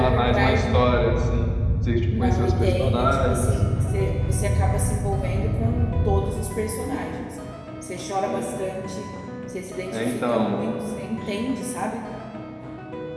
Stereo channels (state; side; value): identical; both; correlation 1.00